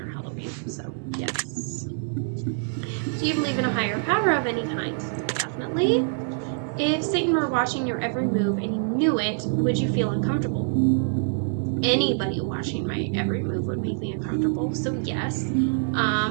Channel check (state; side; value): silent; left; 61 dB below the other